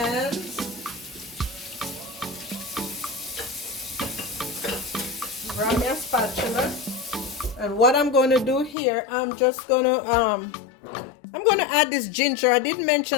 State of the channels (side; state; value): right; drops out; at 8.8 s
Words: Grab me a spatula. And what I'm going to do here, I'm just going to add this ginger. I did